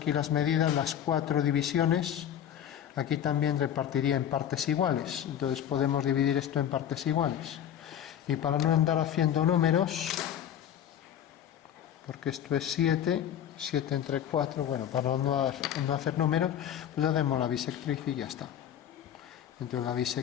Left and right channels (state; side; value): quieter; right; 10.0 dB